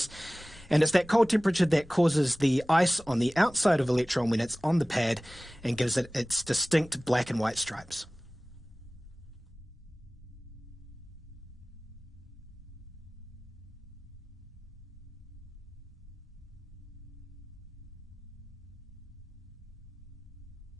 And it's that cold temperature that causes the ice on the outside of Electron when it's on the pad and gives it its distinct black and white stripes.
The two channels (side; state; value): both; normal; correlation 0.98